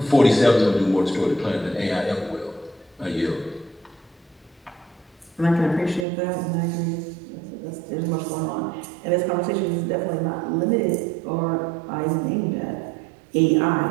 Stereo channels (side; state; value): left; drops out; at 6.1 s